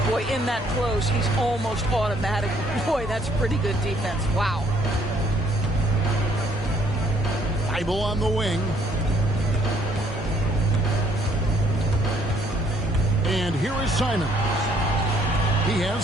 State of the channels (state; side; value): normal; both; correlation 0.65